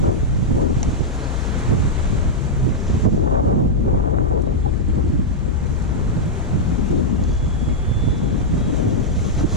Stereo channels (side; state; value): both; normal; correlation -0.04